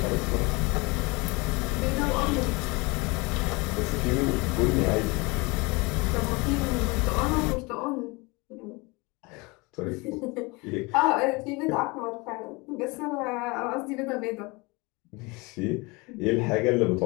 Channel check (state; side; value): quieter; right; 26.1 dB